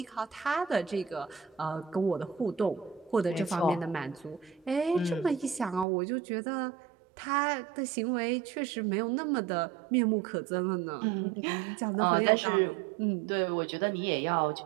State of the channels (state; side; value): drops out; left; at 5.9 s